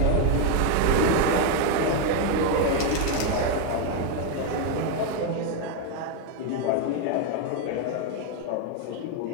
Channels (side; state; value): both; different; correlation 0.01